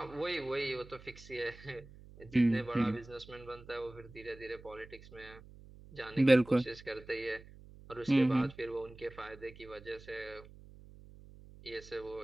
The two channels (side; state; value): right; noise; hum, 19 dB below the sound